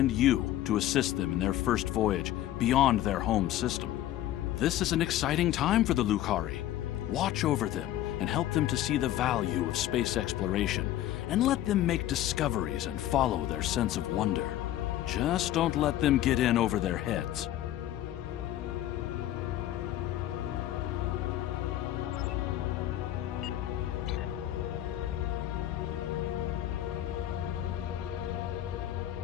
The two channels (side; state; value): right; quieter; 13.2 dB